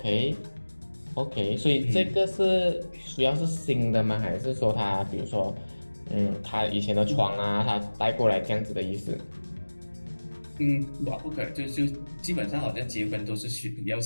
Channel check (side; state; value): both; inverted; correlation -1.00